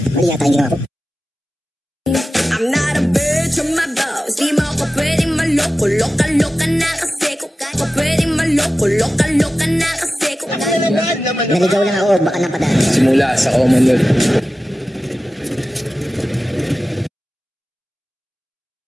yata yung ginawa ko. I'm not a bitch, I'm my boss. Di mo ako pwedeng maloko. Loka-loka na kasi ko kaya ko pwedeng maloko. Loka-loka na kasi ko kaya. Naligaw lang ako, baka napadaan. Simula sa Commonwealth.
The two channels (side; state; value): both; normal; correlation 0.94